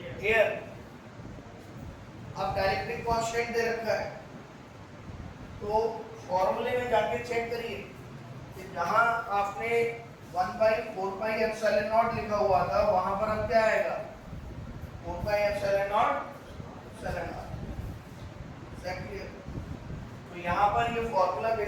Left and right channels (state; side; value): identical; both; correlation 1.00